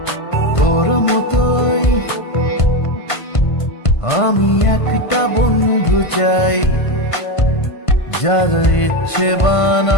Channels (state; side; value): late; right; 1.5 ms